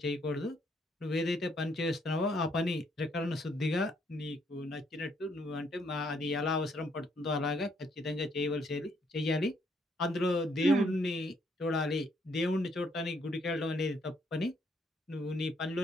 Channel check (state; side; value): normal; both; correlation 0.71